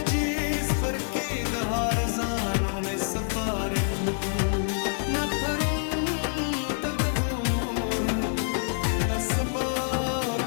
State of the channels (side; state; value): right; silent; digital silence